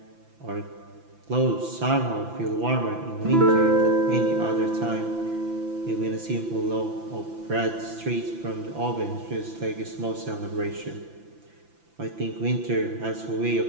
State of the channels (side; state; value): left; late; 5.9 ms